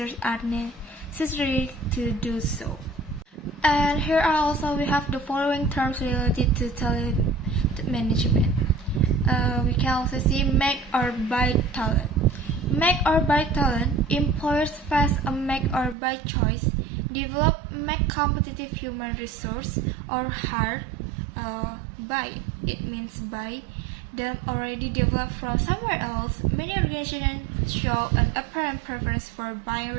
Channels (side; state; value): left; drops out; at 16.0 s